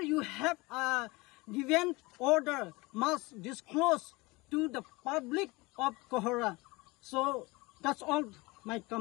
you have given order must disclose to the public of Kohora. So that's all my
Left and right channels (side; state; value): right; quieter; 23.6 dB